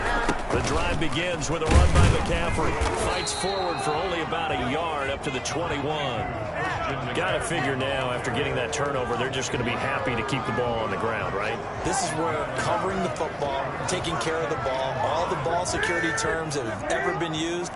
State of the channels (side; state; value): both; identical; correlation 1.00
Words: The drive begins with a run by McCaffrey. Fights forward for only about a yard up to the 21. Got to figure now, after getting that turnover, they're just going to be happy to keep the ball on the ground, right? This is where covering the football, taking care of the ball, all the ball security terms that have ever been used,